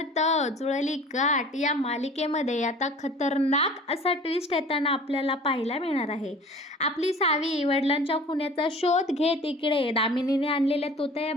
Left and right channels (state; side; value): normal; both; correlation 0.44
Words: जुळली गाठ या मालिकेमध्ये आता खतरनाक असा ट्विस्ट येताना आपल्याला पाहायला मिळणार आहे. आपली सावी वडिलांच्या खुन्याचा शोध घेत इकडे दामिनीने आणलेल्या